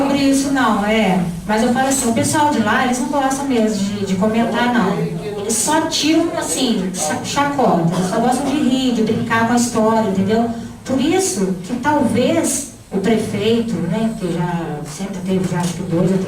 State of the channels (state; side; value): identical; both; correlation 1.00